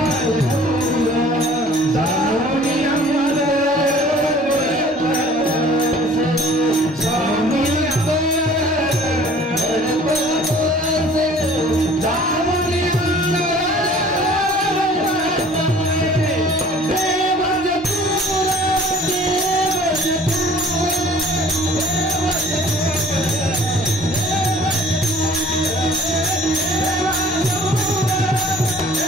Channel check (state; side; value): normal; both; correlation 0.50